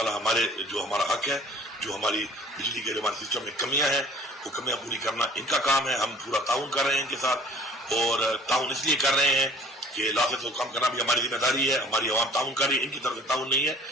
ہمارا حق ہے، جو ہماری بجلی کے ہمارے سسٹم میں کمیاں ہیں وہ کمیاں پوری کرنا ان کا کام ہے. ہم پورا تعاون کر رہے ہیں ان کے ساتھ اور تعاون اس لیے کر رہے ہیں کہ لاسٹ کو کم کرنا بھی ہماری ذمہ داری ہے. ہماری عوام تعاون کر رہی ہے، ان کی طرف سے تعاون نہیں ہے.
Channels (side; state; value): both; normal; correlation 0.49